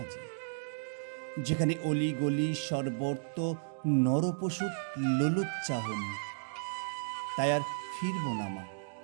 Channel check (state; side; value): silent; left; digital silence